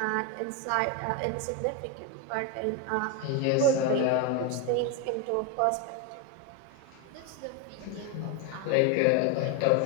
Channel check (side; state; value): both; different; correlation 0.02